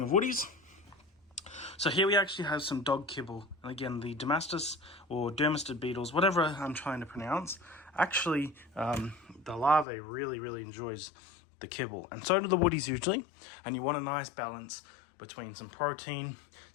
of woodies. So here we actually have some dog kibble. And again, the Dermastus or Dermastid beetles, whatever I'm trying to pronounce, actually the larvae really enjoys the kibble, and so do the woodies usually. And you want a nice balance between some protein,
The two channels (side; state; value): right; drops out; at 9.9 s